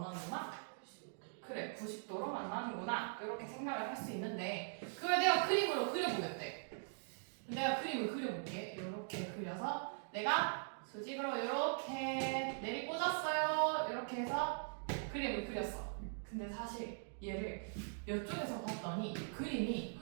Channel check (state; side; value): silent; left; digital silence